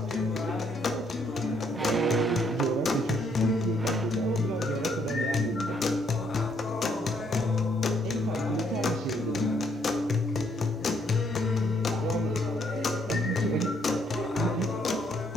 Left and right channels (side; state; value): both; normal; correlation 0.70